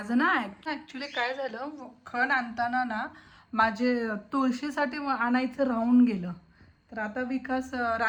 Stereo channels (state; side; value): identical; both; correlation 1.00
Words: ना ॲक्च्युली काय झालं, खण आणताना ना माझे तुळशीसाठी आणायचं राहून गेलं. तर आता विकास